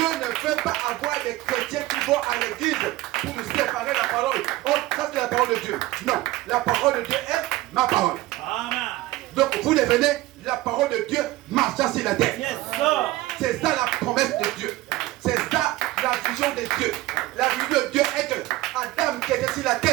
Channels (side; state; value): left; quieter; 17.3 dB